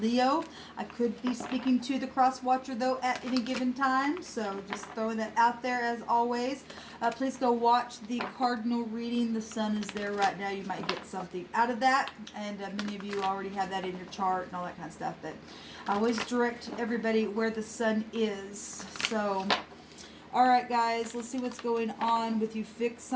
I could be speaking to the cross watcher, though, at any given time, so just throwing that out there as always. Please go watch the Cardinal reading. The sun is there right now. You might get something out of that, and many of you already have that in your chart and all that kind of stuff, but I always direct everybody where the sun is. So all right, guys, let's see what's going on with you fixed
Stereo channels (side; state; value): both; identical; correlation 1.00